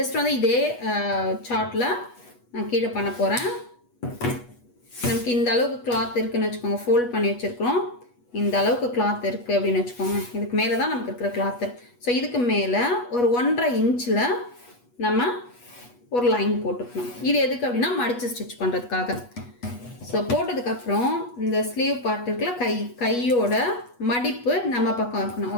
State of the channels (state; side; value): late; right; 8.2 ms